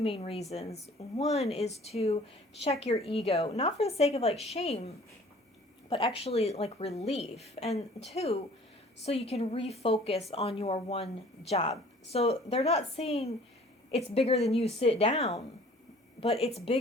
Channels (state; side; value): normal; both; correlation 0.51